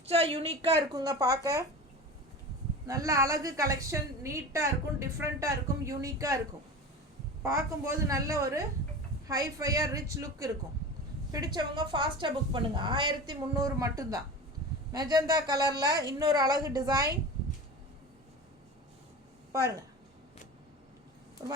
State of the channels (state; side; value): normal; both; correlation 0.31